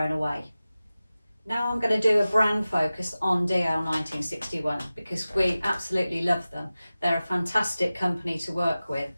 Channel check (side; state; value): both; inverted; correlation -0.96